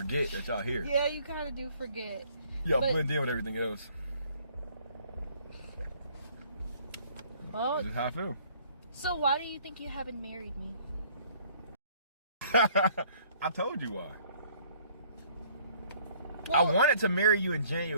that y'all here. Yeah, you kind of do forget. Y'all blend in with everything else. Oh, that's just how I feel. So why do you think you haven't married me? I told you why. Well, I wanted to marry you in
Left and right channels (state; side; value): inverted; both; correlation -0.59